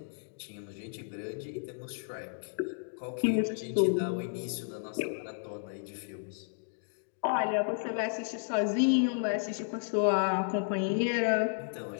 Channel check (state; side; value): silent; right; digital silence